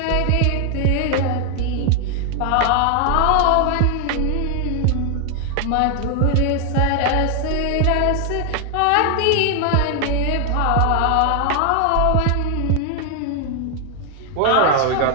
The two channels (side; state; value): both; different; correlation 0.00